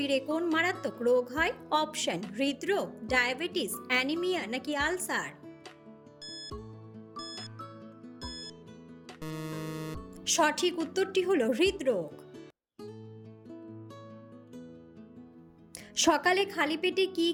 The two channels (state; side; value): identical; both; correlation 1.00